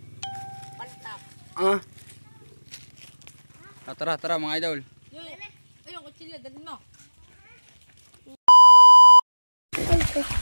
Tara, tara mga idol. Ayun, kutsilyo, dalhin mo.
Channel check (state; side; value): inverted; both; correlation -1.00